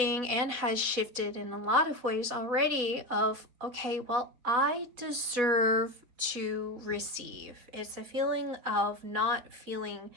and has shifted in a lot of ways already, of, okay, well, I deserve to receive. It's a feeling of not feeling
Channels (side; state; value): left; late; 4.1 ms